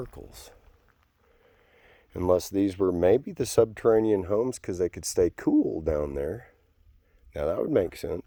Unless these were maybe the subterranean homes because they could stay cool down there. Now that would make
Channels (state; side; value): identical; both; correlation 1.00